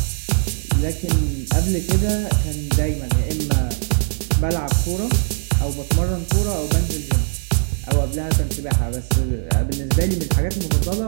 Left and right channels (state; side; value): silent; left; 58 dB below the other